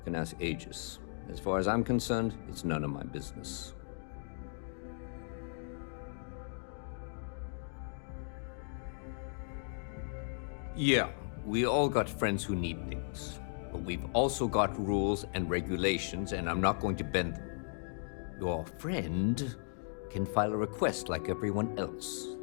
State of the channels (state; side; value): silent; right; digital silence